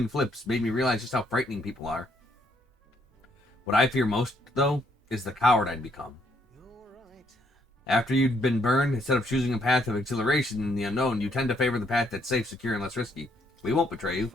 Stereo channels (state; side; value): normal; both; correlation 0.71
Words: flips made me realize just how frightening people are. What I fear most, though, is the coward I'd become. After you've been burned, instead of choosing a path of exhilaration in the unknown, you tend to favor the path that's safe, secure, and less risky. We won't betray you.